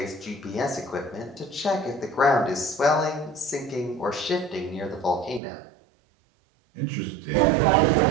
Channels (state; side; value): drops out; left; at 5.4 s